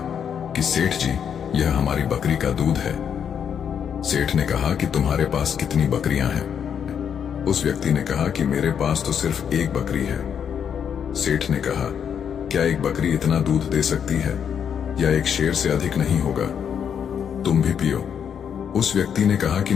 कि सेठ जी, यह हमारी बकरी का दूध है। सेठ ने कहा कि तुम्हारे पास कितनी बकरियां हैं? उस व्यक्ति ने कहा कि मेरे पास तो सिर्फ एक बकरी है। सेठ ने कहा, क्या एक बकरी इतना दूध दे सकती है या एक शेर से अधिक नहीं होगा? तुम भी पियो। उस व्यक्ति ने कहा कि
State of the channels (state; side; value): quieter; right; 8.0 dB